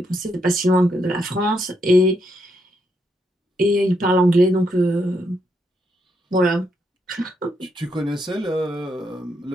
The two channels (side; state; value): both; normal; correlation 0.78